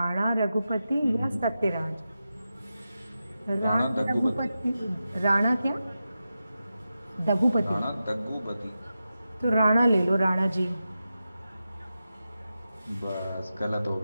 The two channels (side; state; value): both; inverted; correlation -0.91